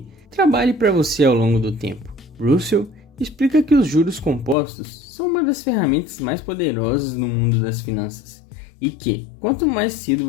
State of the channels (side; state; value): right; drops out; at 4.5 s